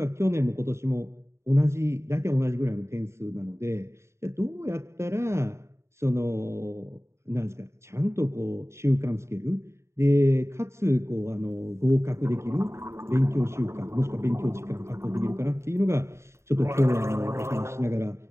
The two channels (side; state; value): left; late; 0.13 ms